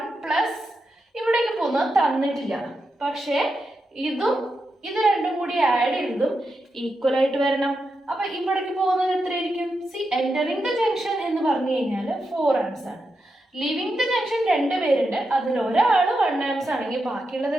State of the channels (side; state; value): both; normal; correlation 0.87